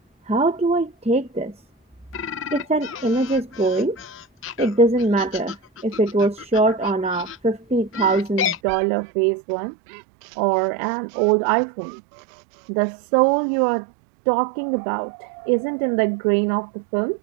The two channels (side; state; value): left; drops out; at 8.6 s